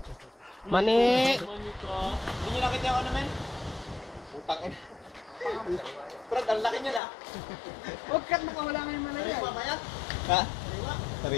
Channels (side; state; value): right; drops out; at 7.0 s